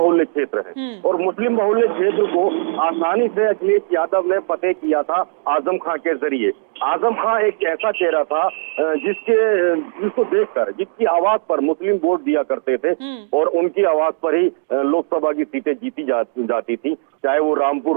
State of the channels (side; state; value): left; silent; 64 dB below the other